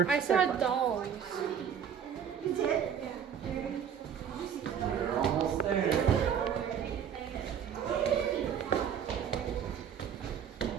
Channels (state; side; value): quieter; left; 8.0 dB